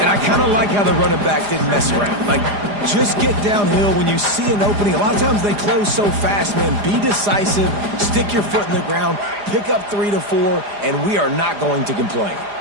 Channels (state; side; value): late; left; 4.9 ms